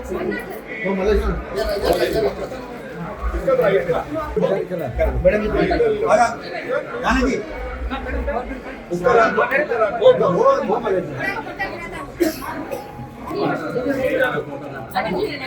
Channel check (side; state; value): both; identical; correlation 1.00